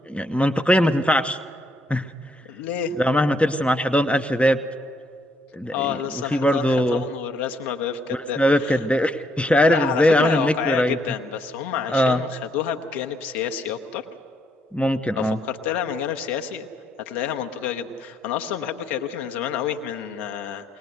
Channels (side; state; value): both; normal; correlation 0.73